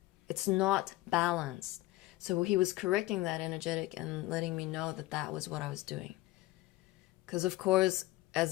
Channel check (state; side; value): quieter; right; 18.1 dB